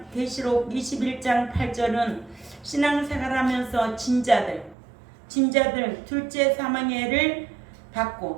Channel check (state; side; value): drops out; left; at 4.8 s